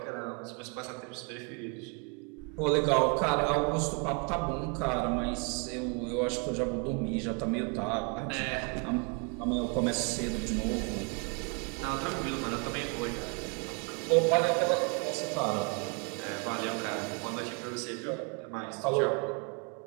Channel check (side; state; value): left; quieter; 34.5 dB